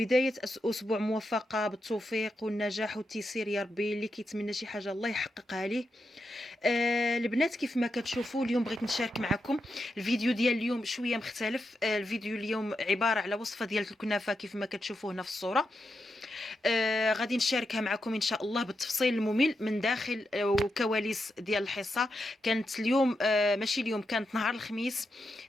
اسبوع موفقه بالتوفيق والنجاح والتيسير يا ربي. اللي كيتمنى شي حاجه الله يحققها ليه. البنات كيف ما كتشوفوا اليوم بغيت نشارك معكم الفيديو ديال اليوم شويه مختلف. الفيديو اليوم عباره على وصفه ديال الكنافه كيف ما كتشوفوا هنا في الصوره. غادي نشاركها معكم ان شاء الله بالتفصيل الممل من داخل وكواليس ديال الحصه. كانت اليوم ماشي اليوم، كانت نهار الخميس.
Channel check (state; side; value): normal; both; correlation 0.86